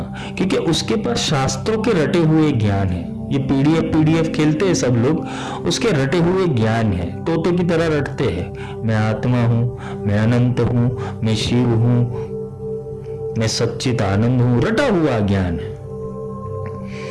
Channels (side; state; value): both; identical; correlation 1.00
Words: क्योंकि उसके पास शास्त्रों के रटे हुए ज्ञान है। ये पीडीएफ खेलते हैं सब लोग, उसके रटे हुए ज्ञान है, तोते की तरह रटते हैं। मैं आत्मा हूं, मैं अनंत हूं, मैं शिव हूं, मैं सच्चित आनंद हूं, रटा हुआ ज्ञान है।